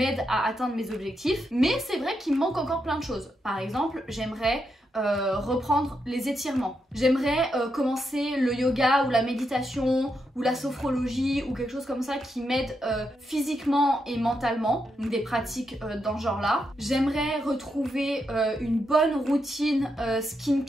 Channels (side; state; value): both; normal; correlation 0.83